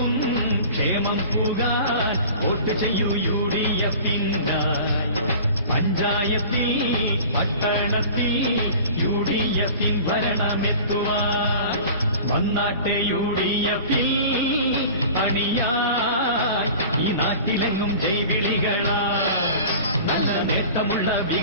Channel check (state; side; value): inverted; both; correlation -0.41